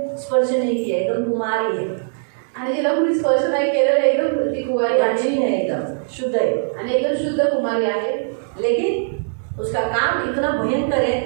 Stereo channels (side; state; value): left; silent; digital silence